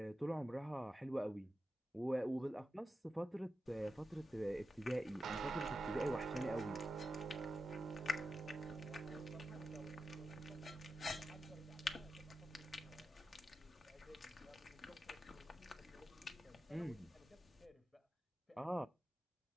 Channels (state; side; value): normal; both; correlation 0.90